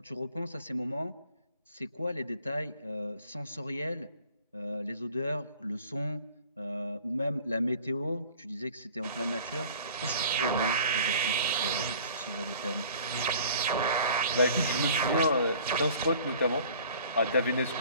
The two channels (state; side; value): inverted; both; correlation -0.49